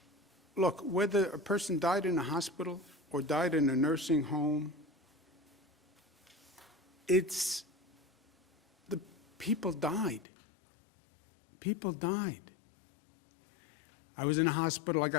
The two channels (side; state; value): right; drops out; at 10.2 s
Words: Look, whether a person died in a hospital or died in a nursing home, it's the people died. People died. I was in a hospital, I